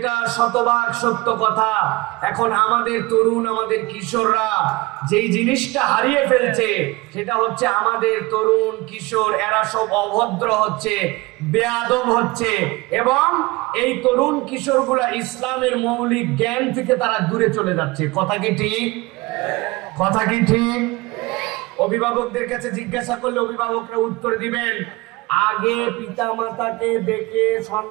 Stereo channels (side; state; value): left; quieter; 22.4 dB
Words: শতভাগ সত্য কথা, এখন আমাদের তরুণ, আমাদের কিশোররা যেই জিনিসটা হারিয়ে ফেলছে সেটা হচ্ছে আমাদের তরুণ কিশোর এরা সব অভদ্র হচ্ছে, বেয়াদব হচ্ছে, এবং এই তরুণ কিশোরগুলা ইসলামের মৌলিক জ্ঞান থেকে তারা দূরে চলে যাচ্ছে। কথা কি ঠিক? কথা কি ঠিক? অভিভাবকদের কাছে জিজ্ঞাসা করলে অভিভাবকরা উত্তর দিবেন, আগে পিতামাতাকে দেখে